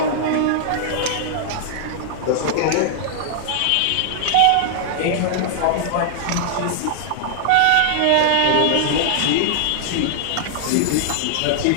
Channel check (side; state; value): both; different; correlation -0.01